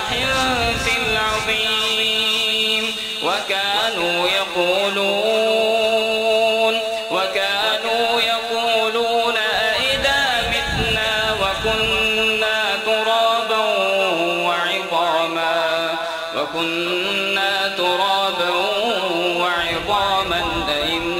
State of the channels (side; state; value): both; identical; correlation 1.00